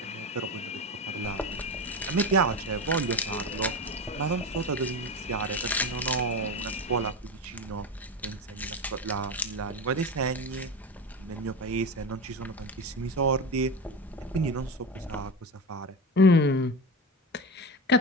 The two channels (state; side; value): normal; both; correlation 0.22